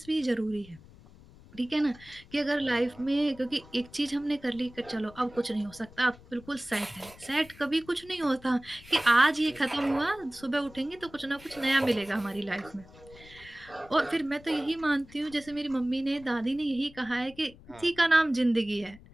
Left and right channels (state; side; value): noise; left; rumble, 22 dB below the sound